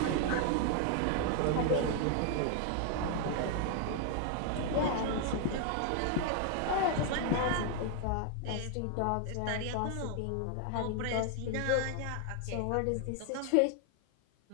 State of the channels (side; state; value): both; different; correlation 0.00